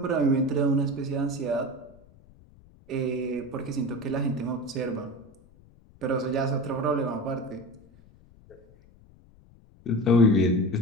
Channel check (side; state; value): left; noise; rumble, 26 dB below the sound